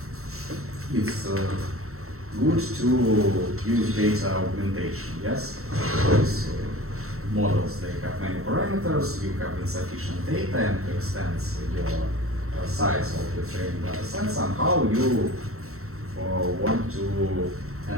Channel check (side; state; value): left; late; 0.63 ms